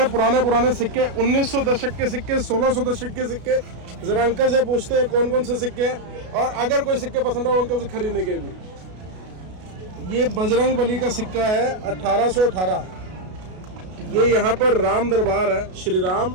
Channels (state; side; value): late; left; 33 ms